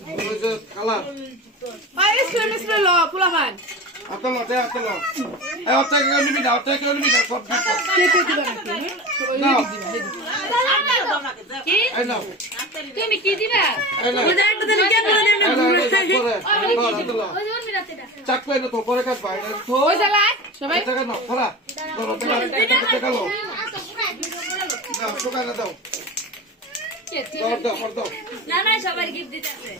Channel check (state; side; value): normal; both; correlation 0.31